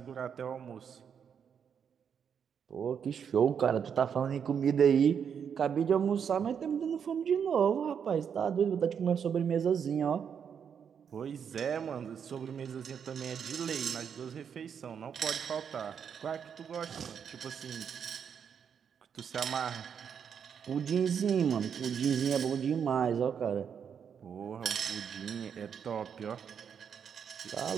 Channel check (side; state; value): left; quieter; 7.5 dB